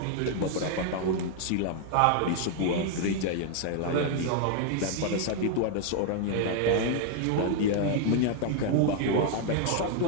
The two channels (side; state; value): both; different; correlation 0.00